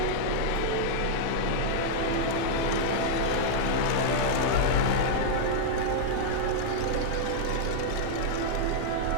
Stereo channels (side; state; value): both; different; correlation -0.02